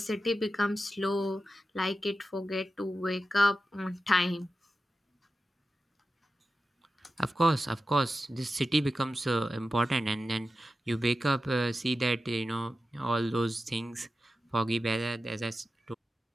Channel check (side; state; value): both; normal; correlation 0.92